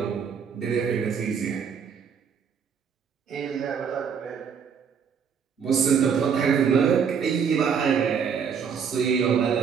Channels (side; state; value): left; quieter; 6.8 dB